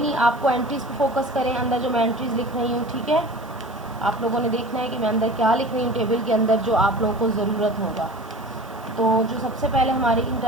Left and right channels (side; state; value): right; noise; hiss, 26 dB below the sound